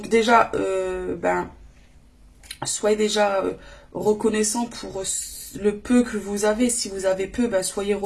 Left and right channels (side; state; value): both; identical; correlation 1.00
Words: déjà, ben, soyez déjà reconnaissant pour le peu que vous avez. Si vous avez peu, ben, soyez